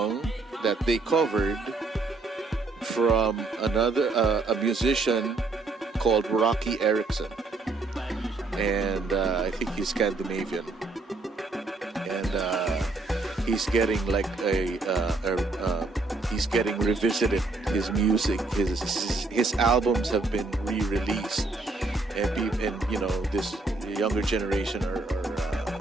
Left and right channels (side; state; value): left; quieter; 3.4 dB